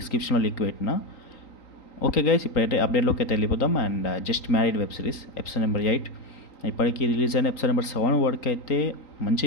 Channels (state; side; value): late; right; 3.9 ms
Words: లింక్ పెట్టిన. ఓకే గైస్, ఇప్పుడైతే అప్డేట్లోకి అయితే వెళ్ళిపోతాం. And just married web series episode number 8 ఇప్పటికీ రిలీజ్ అయిన ఎపిసోడ్ నెంబర్ 7 వరకు అయితే మంచి